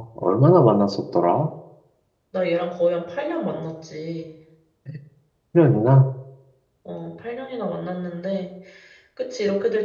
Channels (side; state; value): both; identical; correlation 1.00